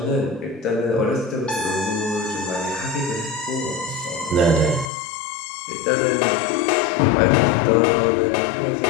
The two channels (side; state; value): right; drops out; at 4.9 s